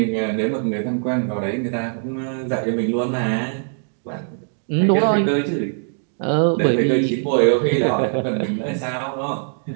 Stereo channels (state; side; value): silent; left; 65 dB below the other